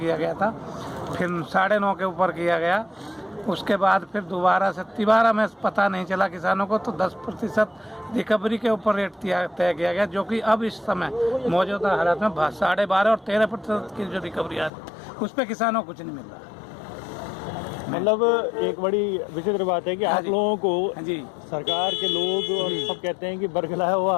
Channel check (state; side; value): drops out; right; at 14.7 s